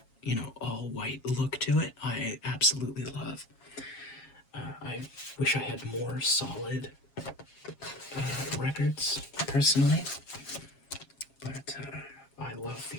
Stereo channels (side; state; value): right; late; 7.3 ms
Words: all-white look to it. I absolutely love. I wish I had more solid records, personally, but I love